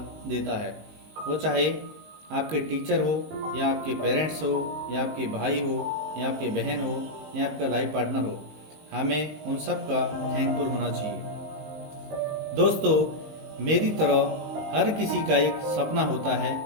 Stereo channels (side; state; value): left; late; 19 ms